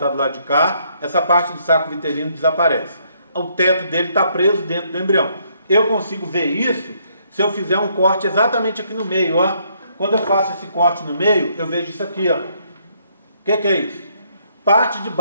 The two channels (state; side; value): inverted; both; correlation -0.70